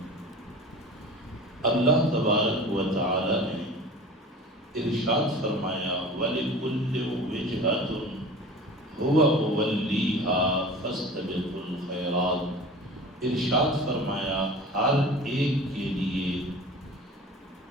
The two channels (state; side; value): normal; both; correlation 0.38